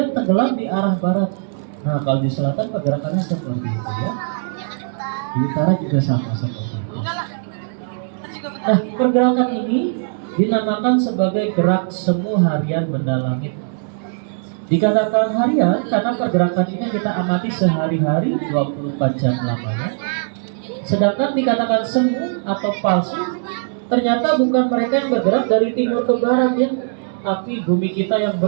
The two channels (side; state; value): left; silent; 66 dB below the other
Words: tenggelam di arah barat. Nah, kalau di selatan pergerakannya seperti itu ya. Di utara juga sama seperti itu. Nah, pergerakan ini dinamakan sebagai gerak semu harian benda langit. Dikatakan harian karena pergerakan ini kita amati sehari-hari 24 jam lamanya. Sedangkan dikatakan semu atau palsu, ternyata bukan mereka yang bergerak dari timur ke barat ya, tapi bumi kita yang